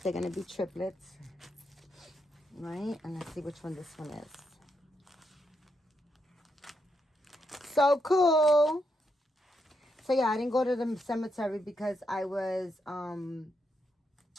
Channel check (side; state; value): both; normal; correlation 0.81